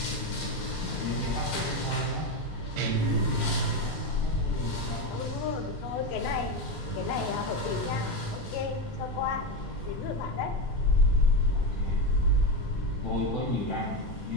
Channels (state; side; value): normal; both; correlation 0.14